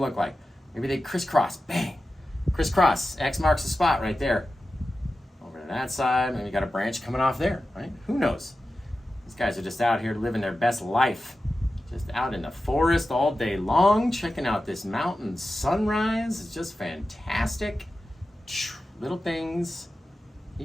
like. Maybe they crisscross. Bang. Crisscross. X marks the spot right there. Over to that side. Maybe you got a branch coming off there, right? Who knows? These guys are just out here living their best life. Just out in the forest all day long, checking out this mountain sunrise. It's just fantastic. Little things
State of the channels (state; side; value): normal; both; correlation 0.93